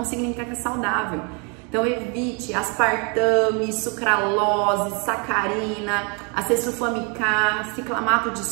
significa que é saudável. Então evite aspartame, sucralose, sacarina, acesulfame-K, ciclamato de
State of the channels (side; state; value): left; quieter; 34.4 dB